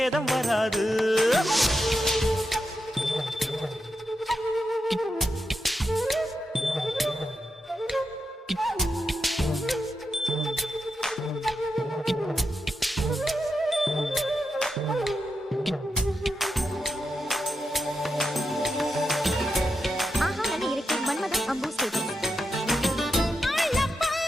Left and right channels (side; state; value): both; normal; correlation 0.86